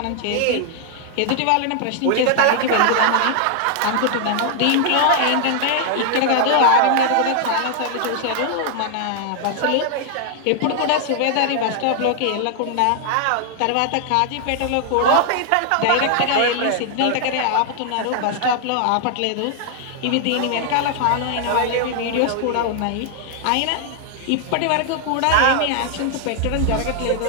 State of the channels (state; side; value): different; both; correlation 0.00